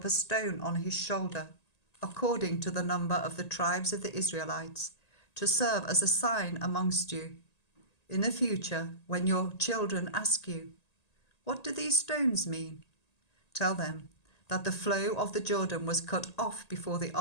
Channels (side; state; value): right; late; 1.9 ms